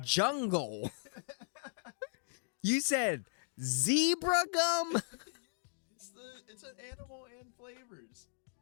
I said jungle. You said zebra gum? mind. Yeah, it's an animal and flavors.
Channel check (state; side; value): silent; right; digital silence